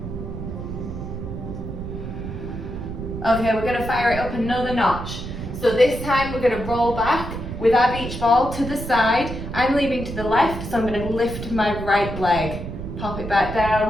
Okay, we're going to fire it up another notch. So this time we're going to roll back with our beach ball to the side. I'm leaning to the left, so I'm going to lift my right leg. Pop it back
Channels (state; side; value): noise; right; rumble, 7 dB below the sound